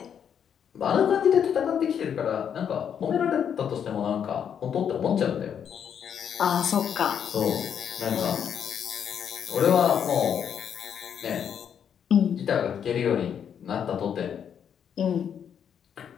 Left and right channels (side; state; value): right; quieter; 8.2 dB